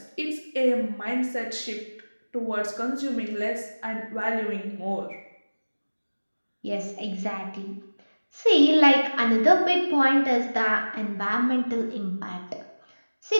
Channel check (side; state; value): both; inverted; correlation -1.00